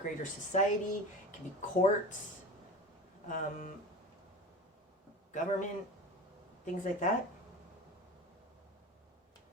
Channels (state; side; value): normal; both; correlation 0.32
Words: society, it can be courts, government, things like that.